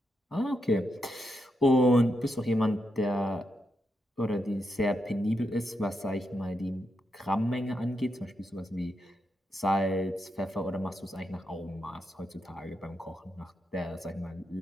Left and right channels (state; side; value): normal; both; correlation 0.84